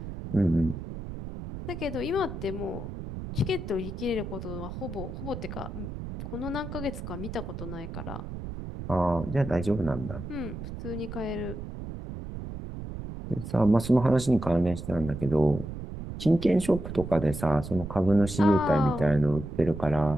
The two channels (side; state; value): right; noise; rumble, 8 dB below the sound